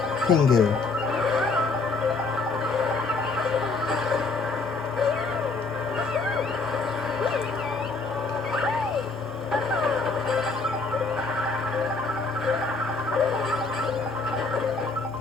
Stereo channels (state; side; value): quieter; right; 3.9 dB